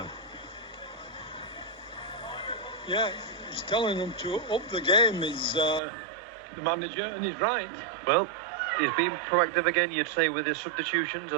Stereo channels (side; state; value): left; drops out; at 5.8 s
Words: Yeah, he's telling them to up the game, is the manager, and he's right. Well, he's been proactive again, you'd say, with his substitutions,